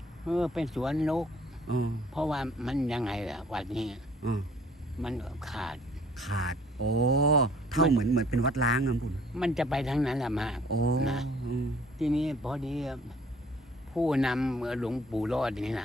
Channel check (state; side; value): normal; both; correlation 0.56